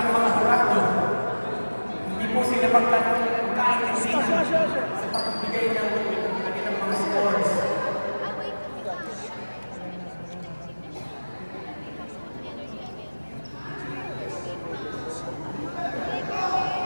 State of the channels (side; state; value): both; inverted; correlation -1.00